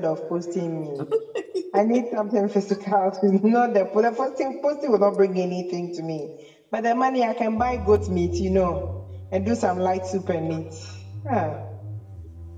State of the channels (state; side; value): identical; both; correlation 1.00